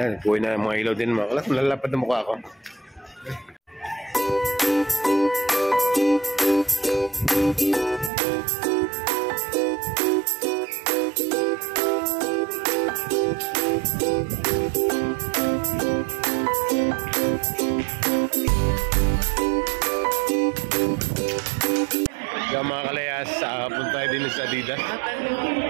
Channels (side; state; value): left; drops out; at 8.1 s